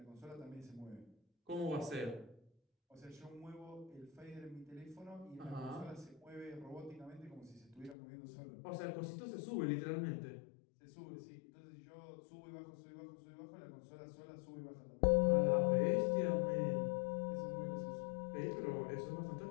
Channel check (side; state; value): right; drops out; at 8.0 s